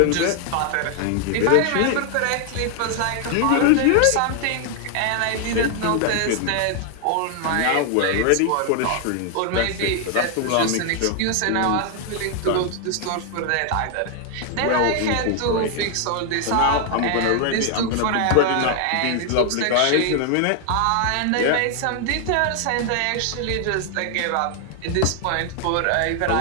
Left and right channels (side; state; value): both; different; correlation 0.00